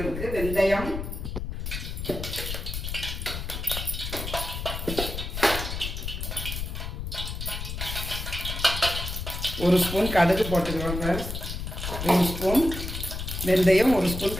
வெந்தயம், ஒரு ஸ்பூன் கடுகு போட்டுக்கிறோம் ஃப்ரெண்ட்ஸ். 1 ஸ்பூன் வெந்தயம், 1 ஸ்பூன்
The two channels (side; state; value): left; noise; rumble, 5 dB below the sound